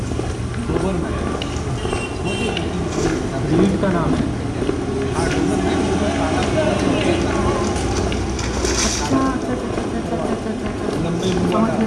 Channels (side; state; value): both; identical; correlation 1.00